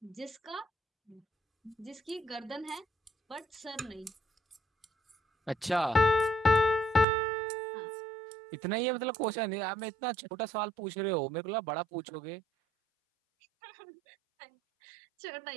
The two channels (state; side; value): drops out; left; at 7.1 s